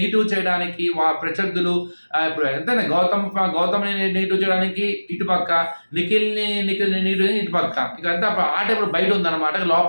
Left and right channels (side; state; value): both; inverted; correlation -1.00